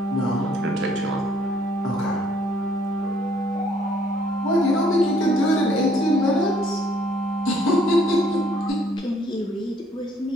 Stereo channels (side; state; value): both; normal; correlation 0.64